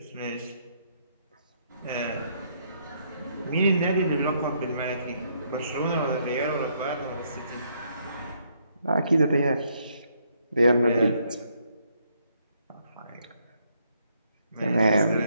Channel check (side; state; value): both; inverted; correlation -0.72